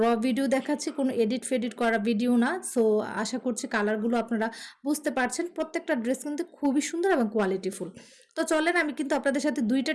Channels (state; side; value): identical; both; correlation 1.00